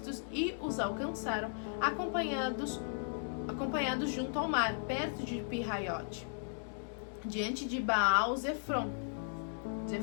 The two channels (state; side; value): silent; right; digital silence